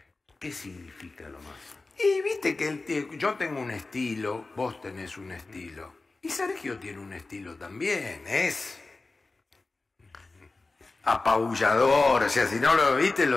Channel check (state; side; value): quieter; right; 3.5 dB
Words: ¿Qué significa lo Massa? Y viste que yo tengo un estilo, vos tenés un estilo. Y Sergio tiene un estilo también, es apabullador, o sea, si no lo viste,